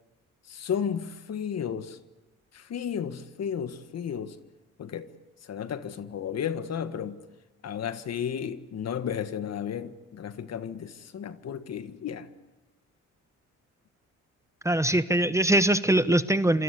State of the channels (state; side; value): normal; both; correlation 0.42